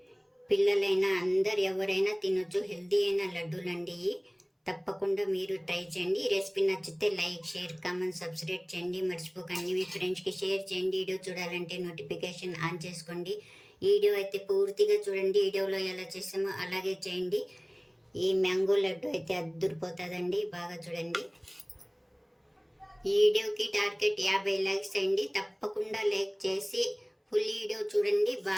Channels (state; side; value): identical; both; correlation 1.00